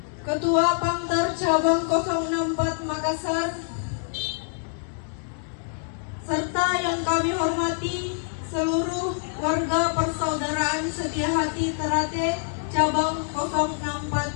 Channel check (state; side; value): silent; right; digital silence